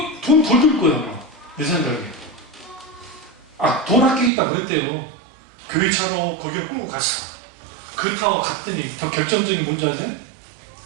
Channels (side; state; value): left; drops out; at 4.3 s